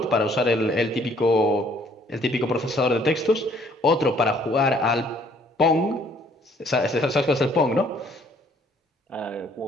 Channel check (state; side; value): normal; both; correlation 0.62